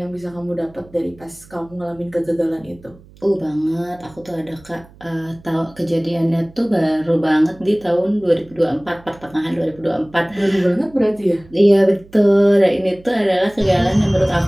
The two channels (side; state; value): right; noise; hum, 25 dB below the sound